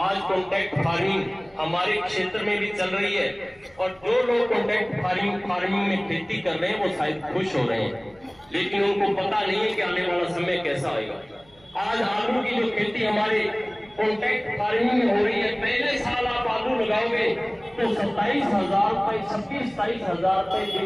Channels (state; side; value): noise; right; hum, 29 dB below the sound